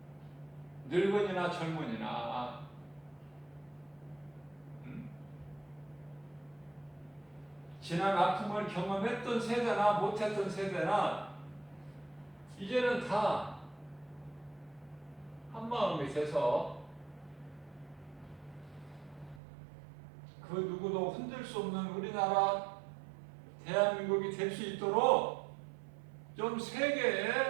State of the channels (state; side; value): drops out; left; at 19.4 s